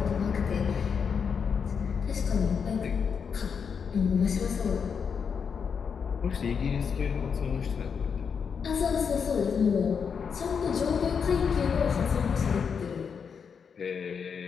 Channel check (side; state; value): right; quieter; 6.4 dB